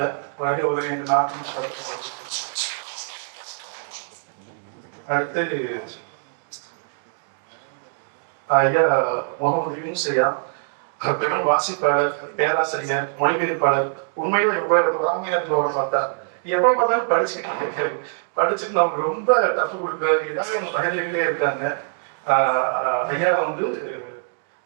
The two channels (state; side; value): silent; left; digital silence